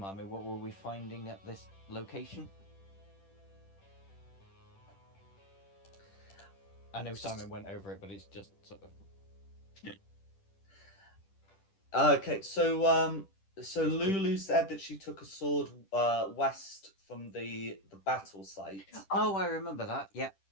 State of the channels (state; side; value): late; right; 10 ms